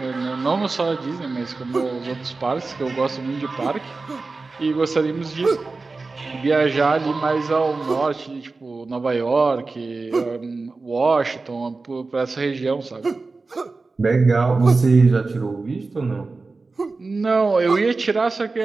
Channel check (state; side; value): quieter; left; 3.8 dB